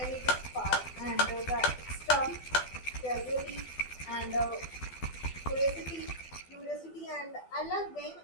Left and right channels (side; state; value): right; late; 12 ms